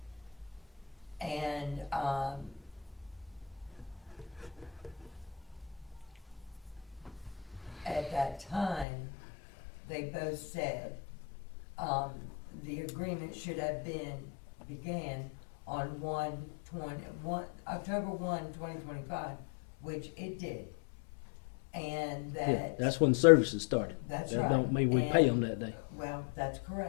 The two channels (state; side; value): drops out; right; at 8.8 s